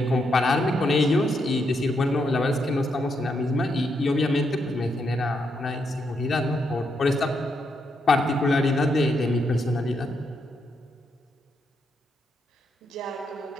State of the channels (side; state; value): both; normal; correlation 0.80